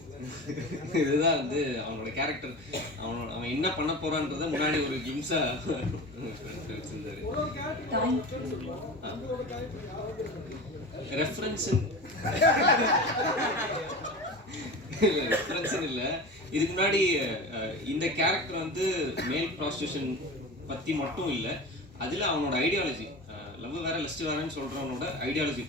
இதுதான் வந்து அவனோட கேரக்டர், அவன் என்ன பண்ண போறான்றத முன்னாடி ஒரு கிம்ஸா வச்சிருந்தாரு. ரெஃபரன்ஸ் இல்லை. இதுக்கு முன்னாடி இந்த கேரக்டர் வந்து மேல் ப்ராஸ்டியூஷன் பற்றி மட்டும் இல்லை, அதில் அவனோட ஐடியாலஜி, லவ் வேற லஸ்ட் வேறன்னு சொல்கிறவனோட ஐடியாலஜி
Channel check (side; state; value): both; normal; correlation 0.31